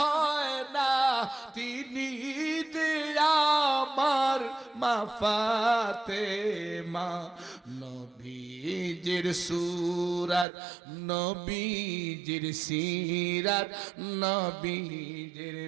না, তিনি আমার মা ফাতেমা, নবীজির সুরাত নবীজির সিরাত নবীজির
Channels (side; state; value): left; drops out; at 10.5 s